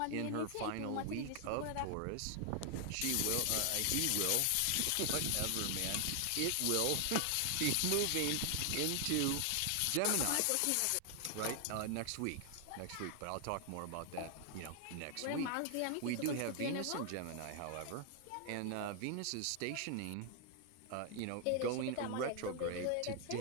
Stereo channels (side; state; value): both; different; correlation 0.00